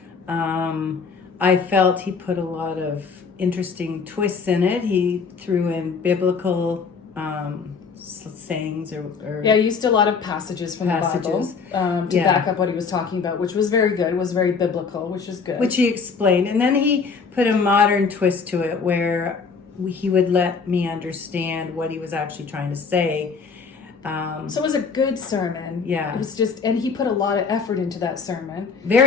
I felt he put a lot of interesting twists in it. He threw in biblical sayings or he used a lot of passages from the Bible to back up what he was talking about, which was very good. It was very biblical, which is good. Which he explained. And then he put a modern twist to it where he would let me understand what he was actually trying to say. So it was a good sermon. Yeah. It was and he put a lot of effort into that sermon.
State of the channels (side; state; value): right; quieter; 5.3 dB